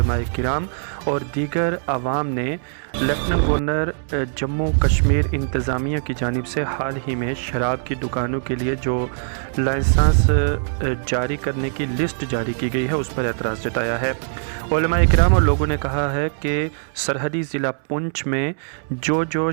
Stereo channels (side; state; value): left; silent; 65 dB below the other